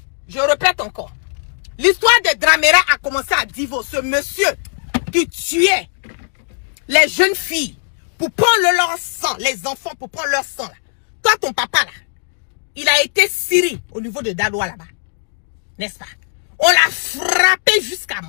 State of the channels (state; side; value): silent; right; digital silence